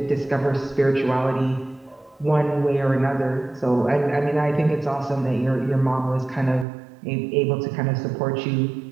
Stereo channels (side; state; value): left; drops out; at 6.7 s